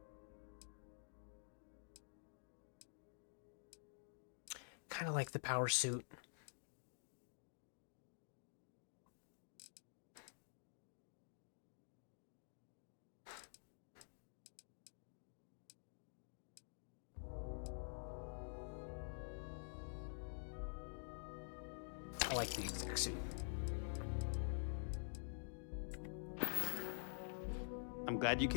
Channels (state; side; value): silent; right; digital silence